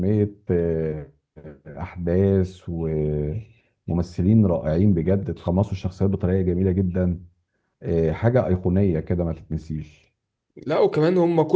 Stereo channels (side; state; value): both; identical; correlation 1.00